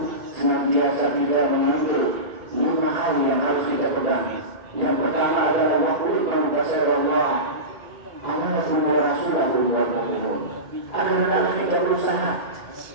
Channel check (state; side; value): late; left; 2.8 ms